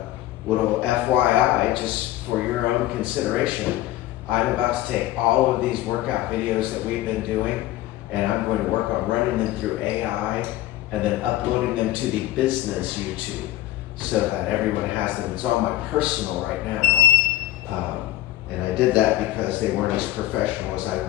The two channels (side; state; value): right; quieter; 15.1 dB